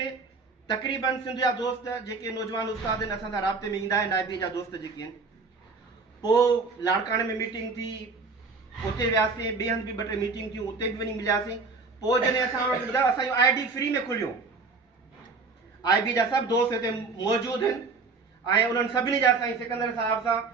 तक़रीबन सिंध जा दोस्त जेके नौजवान उस्ताद आहिनि असां सां राब्ते में ईंदा आहिनि, IB जा दोस्त जेके आहिनि, पोइ लाड़काणे में मीटिंग थी, उते वियासीं, ॿिए हंधि बि 2 टे मीटिंग थियूं, उते बि वञी मिलियासीं। पोइ जॾहिं असां वटि ॿुधायो असांजो ID फ्री में खुलियो, IB जा सभु दोस्त हिते मौजूदु आहिनि, ऐं उन्हनि सभिनी जा साईं सिकंदर साहिब सां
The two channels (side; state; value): left; quieter; 4.3 dB